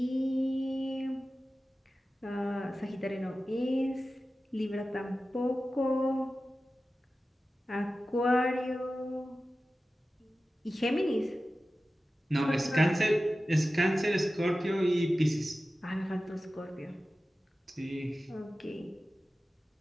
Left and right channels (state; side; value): normal; both; correlation 0.95